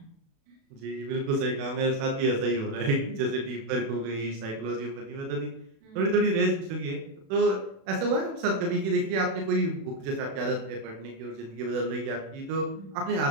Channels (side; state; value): left; late; 36 ms